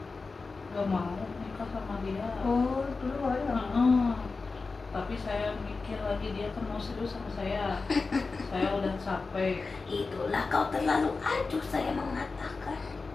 gak mau nikah sama dia. Oh dulu awalnya. Heeh. Tapi saya mikir lagi dia kan mau serius sama saya. Saya udah capek. Itulah kau terlalu acuh, saya mengatakan.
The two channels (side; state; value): right; quieter; 4.1 dB